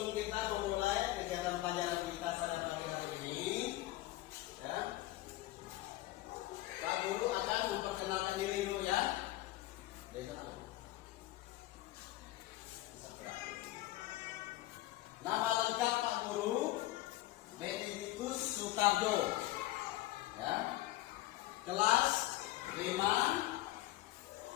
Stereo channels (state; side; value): quieter; right; 16.9 dB